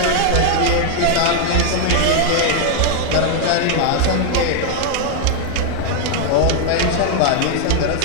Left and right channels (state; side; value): different; both; correlation 0.00